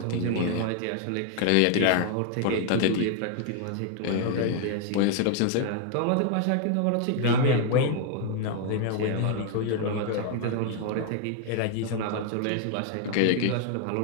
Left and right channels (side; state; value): both; different; correlation 0.00